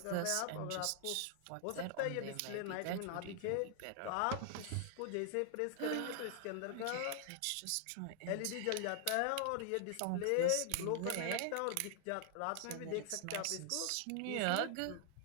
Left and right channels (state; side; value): different; both; correlation 0.00